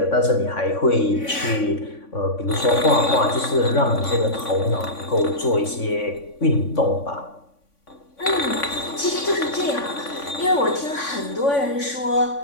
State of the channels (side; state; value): right; late; 3.5 ms